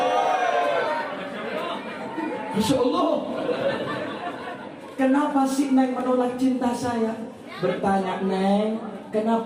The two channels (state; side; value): identical; both; correlation 1.00